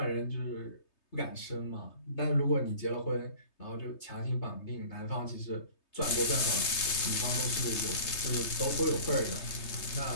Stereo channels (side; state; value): right; late; 3.3 ms